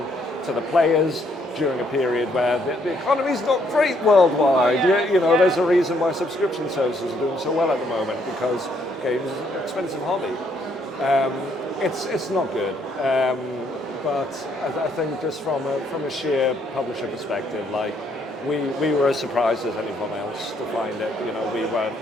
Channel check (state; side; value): normal; both; correlation 0.70